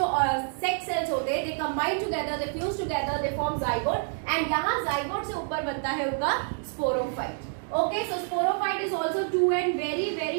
सेक्स सेल्स होते हैं they combine together, they fuse together, they form zygote and यहाँ जाइगोट से ऊपर बनता है उनका sporophyte. Okay. So sporophyte is also 2N. Very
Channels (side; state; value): left; silent; 60 dB below the other